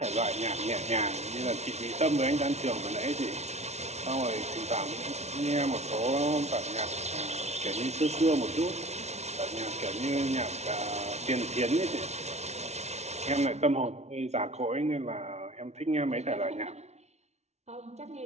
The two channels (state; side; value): late; left; 0.32 ms